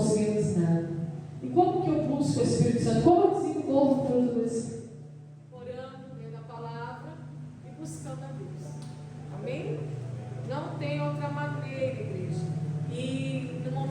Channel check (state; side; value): identical; both; correlation 1.00